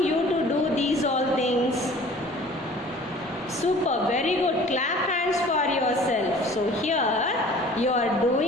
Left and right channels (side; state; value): both; normal; correlation 0.48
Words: you to do these all things? Super. Very good. Clap hands for yourself. So, here you are